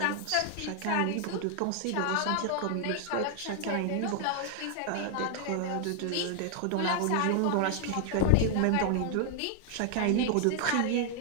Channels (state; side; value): different; both; correlation 0.00